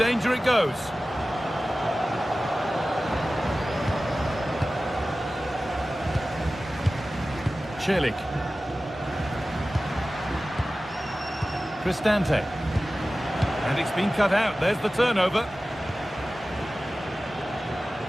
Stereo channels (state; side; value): normal; both; correlation 0.96